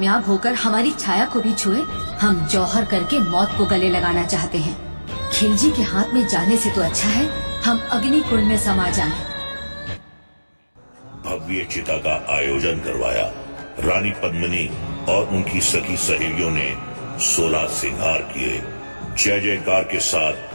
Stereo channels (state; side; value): inverted; both; correlation -1.00